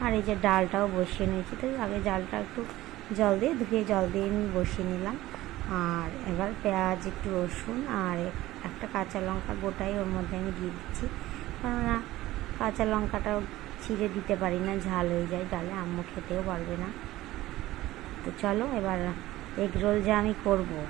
আর এই যে ডালটাও বসিয়ে নিয়েছি। তো আগে ডালটা একটু জল দিয়ে ধুয়ে জল দিয়ে আমি বসিয়ে নিলাম। আর এবার পেঁয়াজ, একটু রসুন আর একটা কাঁচা লঙ্কা গোটাই ওর মধ্যে আমি দিয়ে দিচ্ছি, কেননা কাঁচা লঙ্কাটাও ছিঁড়ে দিতে পারি না, ঝাল হয়ে যায় ডালে, আম্মু খেতেও পারবে না। তো চলো এবার এগ রোল যা আমি করব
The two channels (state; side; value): quieter; left; 16.5 dB